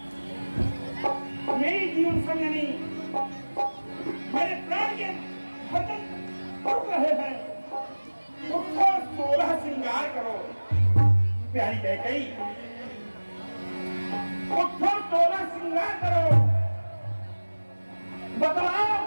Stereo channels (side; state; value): both; inverted; correlation -1.00